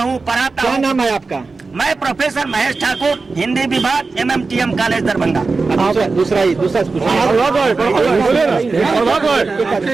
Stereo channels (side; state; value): left; quieter; 4.1 dB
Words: पढ़ाता हूँ। क्या नाम है आपका? मैं प्रोफेसर महेश ठाकुर, हिंदी विभाग, MMTM कॉलेज दरभंगा। दूसरा